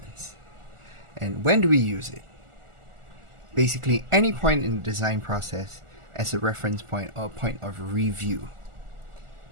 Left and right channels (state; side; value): late; left; 1.4 ms